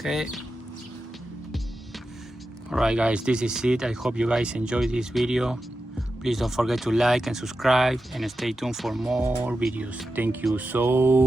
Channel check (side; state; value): both; normal; correlation 0.91